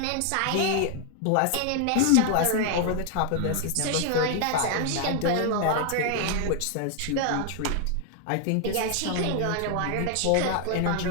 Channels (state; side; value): different; both; correlation 0.00